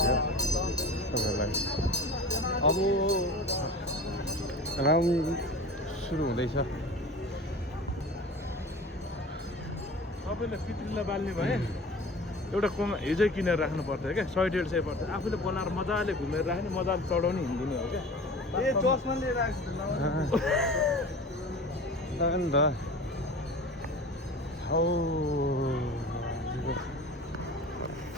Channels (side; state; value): both; normal; correlation 0.38